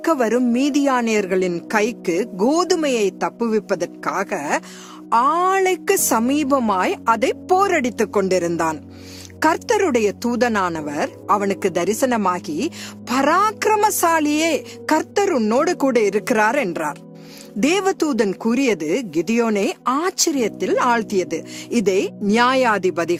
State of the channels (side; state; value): both; identical; correlation 1.00